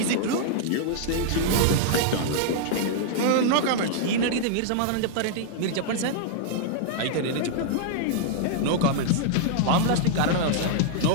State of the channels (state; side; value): different; both; correlation -0.01